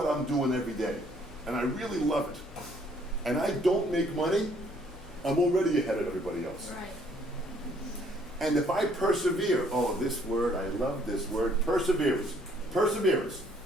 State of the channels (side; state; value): both; normal; correlation 0.64